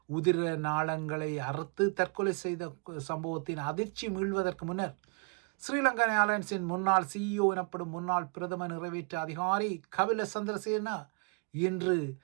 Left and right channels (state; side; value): quieter; left; 34.3 dB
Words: உதிர நாளங்களை அறுத்து தற்கொலை செய்த சம்பவத்தின் அதிர்ச்சி மீள்வதற்கு முன்னர் ஸ்ரீலங்கா ஏர்லைன்ஸின் முன்னாள் CEO எனப்படும் முன்னாள் பிரதம நிறைவேற்று அதிகாரி கபில சந்திரசேன இன்று